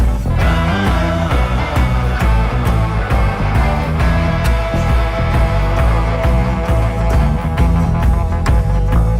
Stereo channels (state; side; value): identical; both; correlation 1.00